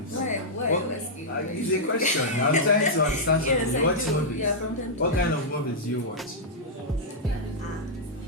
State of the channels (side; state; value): both; normal; correlation -0.08